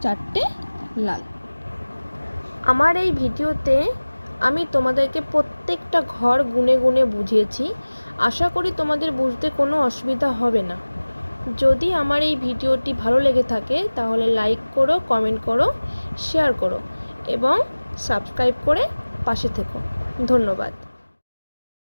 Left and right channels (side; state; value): both; inverted; correlation -1.00